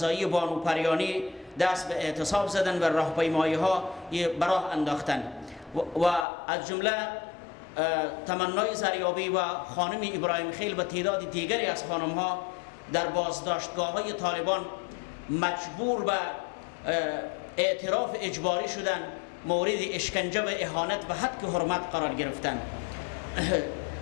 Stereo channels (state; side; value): drops out; right; at 6.2 s